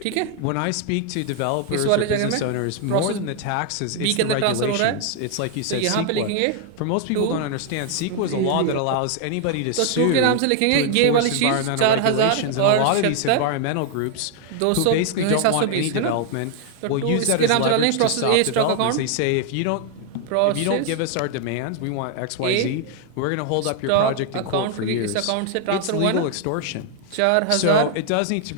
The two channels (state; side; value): different; both; correlation 0.00